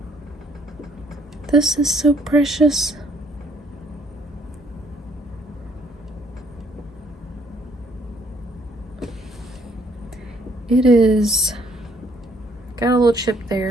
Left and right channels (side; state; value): both; normal; correlation 0.64